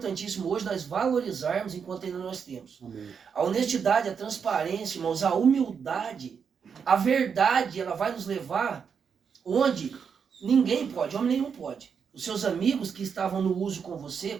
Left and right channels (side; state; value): left; quieter; 6.6 dB